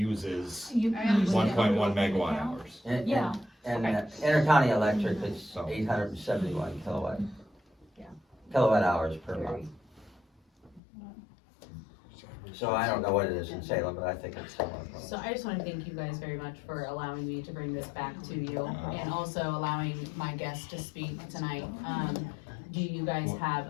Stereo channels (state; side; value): drops out; right; at 10.8 s